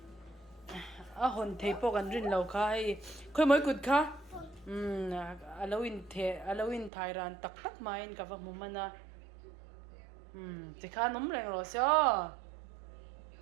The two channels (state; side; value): drops out; left; at 6.9 s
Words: Hon thei po kan rin lo khai. Khoi moi kut kha. Alo in Thailand tak main ka va mumana. Ti kha nom reng lo syo.